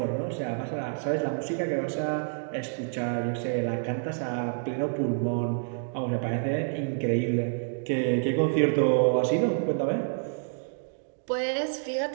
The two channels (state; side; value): silent; left; digital silence